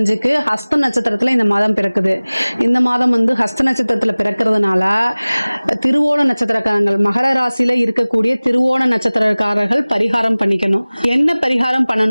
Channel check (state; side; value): inverted; both; correlation -1.00